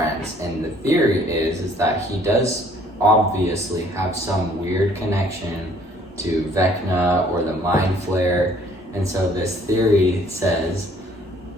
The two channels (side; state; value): both; normal; correlation 0.59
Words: And the theory is that he does obviously have some weird connection to Vecna or the Mind Flayer. And so this theory says